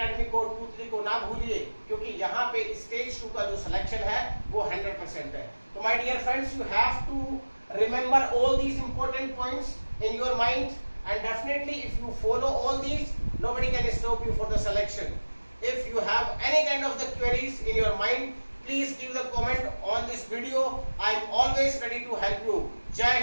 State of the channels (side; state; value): both; inverted; correlation -1.00